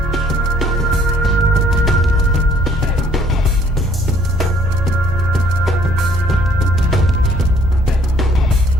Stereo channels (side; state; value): both; normal; correlation 0.60